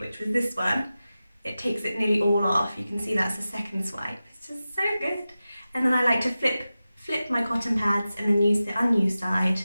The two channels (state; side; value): inverted; both; correlation -0.94